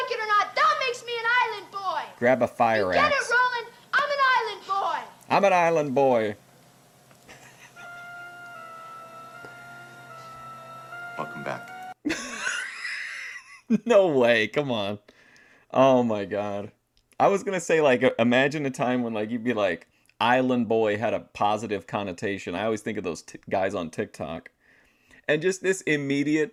like it or not, that makes me an island boy. Grab a fire You get axe. it, Roland? I'm an island boy. I'm an island boy. Welcome back. No way. Come on. Oh my god. I was gonna say, like, imagine a time when, like, you'd be like, island boy had a positive connotation. I always think of those guys on TikTok. And just this immediate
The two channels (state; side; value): identical; both; correlation 1.00